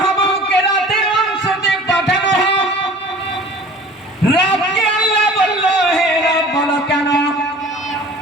রাতের অংশতে পাঠানো হোক। রাতকে আল্লাহ বলল, হে রব, বলো কেন?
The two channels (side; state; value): both; normal; correlation 0.45